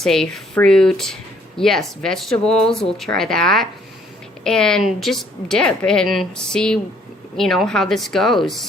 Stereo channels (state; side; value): normal; both; correlation 0.63